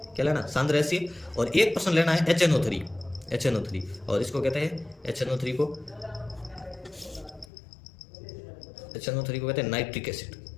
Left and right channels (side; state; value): right; drops out; at 7.5 s